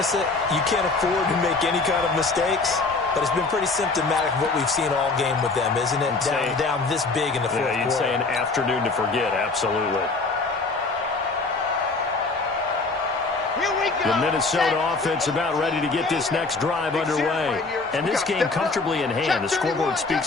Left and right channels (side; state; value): right; quieter; 3.8 dB